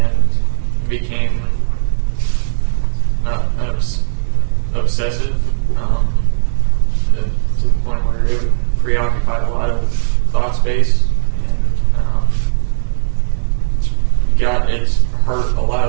became obsessive to the point where it preoccupied a lot of thought space, and it's hurt a lot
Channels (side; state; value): left; silent; digital silence